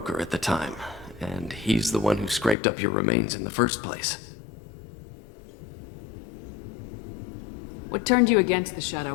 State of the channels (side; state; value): right; drops out; at 2.6 s